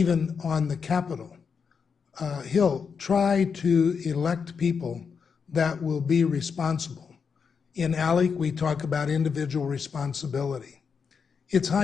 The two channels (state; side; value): quieter; right; 6.0 dB